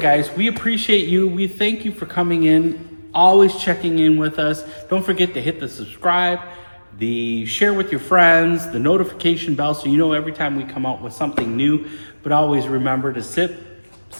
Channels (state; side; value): inverted; both; correlation -1.00